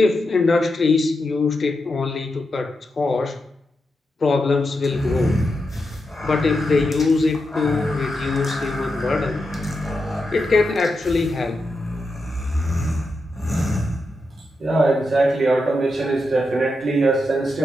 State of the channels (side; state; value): both; normal; correlation 0.87